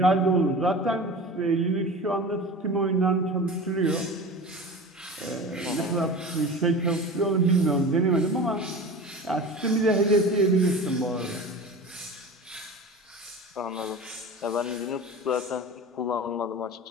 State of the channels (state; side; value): normal; both; correlation 0.34